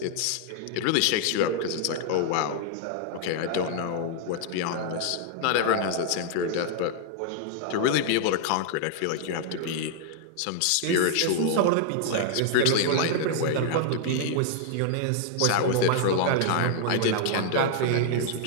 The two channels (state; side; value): different; both; correlation -0.01